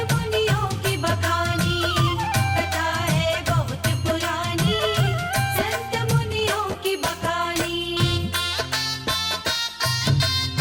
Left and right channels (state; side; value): identical; both; correlation 1.00